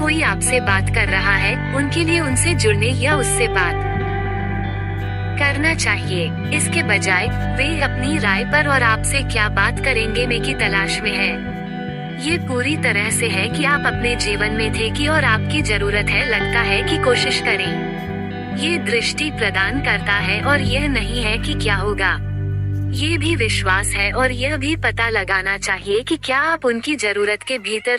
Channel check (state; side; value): identical; both; correlation 1.00